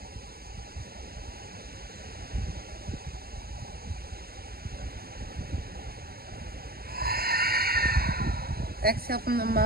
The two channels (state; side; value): late; left; 0.44 ms